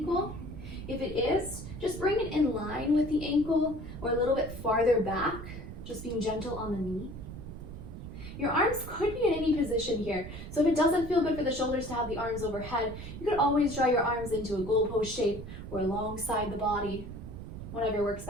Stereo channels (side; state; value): right; noise; rumble, 10 dB below the sound